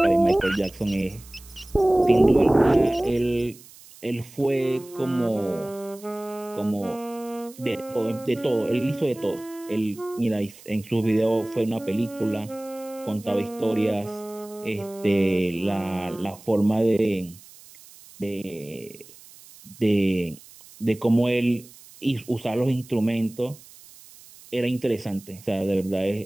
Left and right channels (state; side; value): noise; right; hiss, 21 dB below the sound